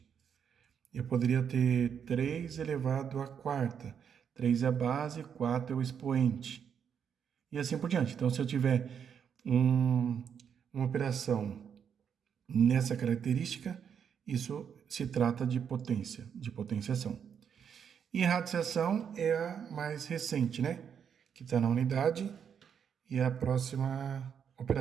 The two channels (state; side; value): quieter; left; 7.7 dB